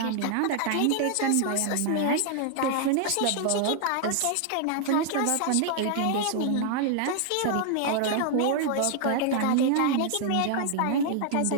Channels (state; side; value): different; both; correlation 0.00